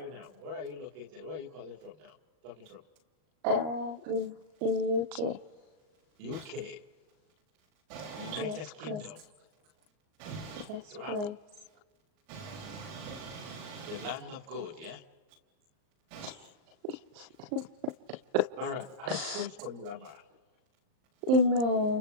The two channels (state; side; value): late; left; 38 ms